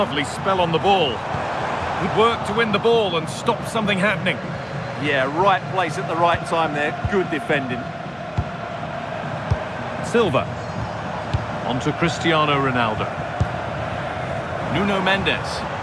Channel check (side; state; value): both; identical; correlation 1.00